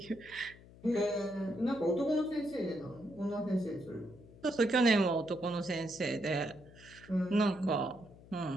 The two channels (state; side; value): noise; left; hum, 21 dB below the sound